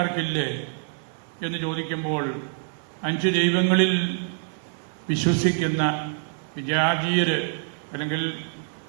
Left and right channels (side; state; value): left; silent; digital silence